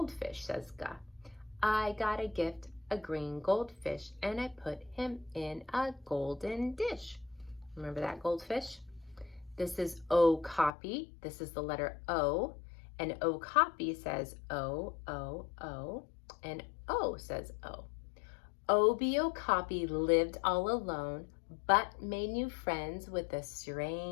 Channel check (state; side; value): drops out; right; at 10.7 s